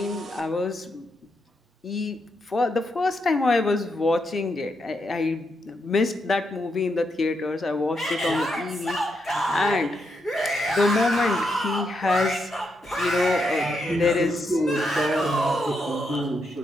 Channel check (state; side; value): normal; both; correlation 0.81